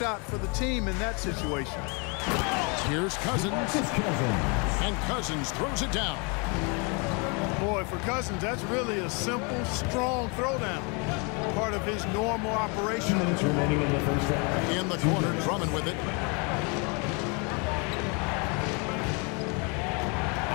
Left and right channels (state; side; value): quieter; right; 32.8 dB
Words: for the team in that situation. Here's Cousins. And Cousins throws it down. Boy, for Cousins, that's really a simple, strong throwdown. Part of his normal operation. 2 minutes remaining in the first half. In the corner, Drummond with it.